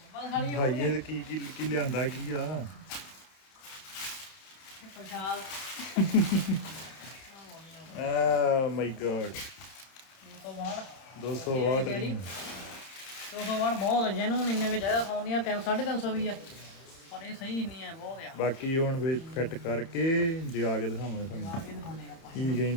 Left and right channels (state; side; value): late; right; 30 ms